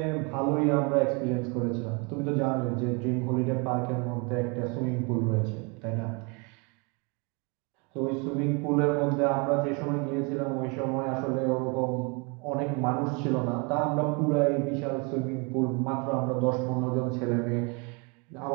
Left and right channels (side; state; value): left; quieter; 31.6 dB